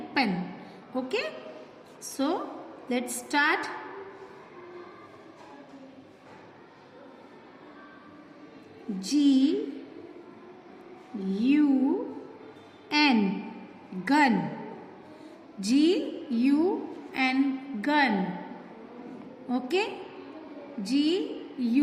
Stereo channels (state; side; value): identical; both; correlation 1.00